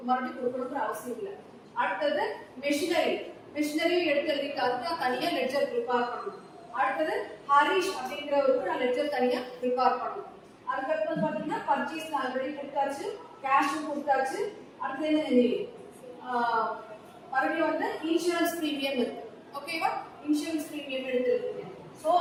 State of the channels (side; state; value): both; identical; correlation 1.00